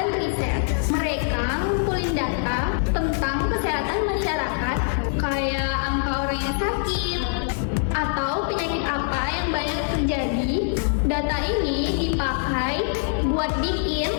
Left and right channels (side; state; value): right; silent; digital silence